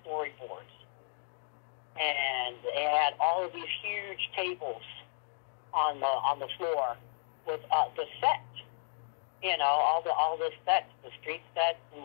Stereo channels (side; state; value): right; silent; digital silence